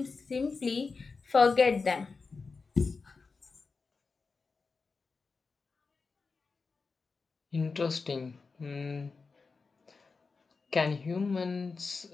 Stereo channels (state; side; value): quieter; right; 4.5 dB